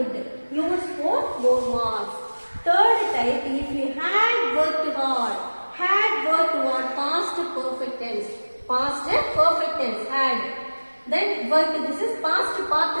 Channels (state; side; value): inverted; both; correlation -1.00